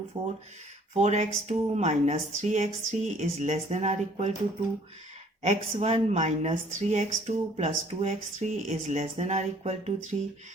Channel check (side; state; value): both; normal; correlation 0.58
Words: 4, 4x2 minus 3x3 is less than or equal to 2, x1 minus 3x2 plus 2x3 is less than or equal to 3,